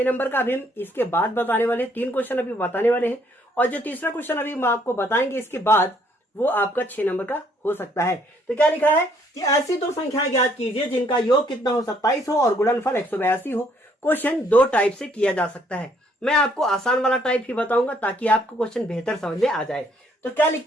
नंबर का अभी हम इसके बाद बताने वाले हैं, 3 क्वेश्चन अभी बताने वाले हैं, और जो तीसरा क्वेश्चन अभी हम आपको बताएंगे इसके बाद, वो आपका 6 नंबर का हो सकता है। तो क्या लिखा है कि ऐसी 2 संख्याएं ज्ञात कीजिए जिनका योग कितना हो, 27 हो और गुणनफल 182 हो। क्वेश्चन 2 टाइप से किया जा सकता है। मैं आपको आसान वाला टाइप ही बताऊंगा ताकि आपको क्वेश्चन बेहतर समझ में आ जाए। तो क्या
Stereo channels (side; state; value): both; normal; correlation 0.66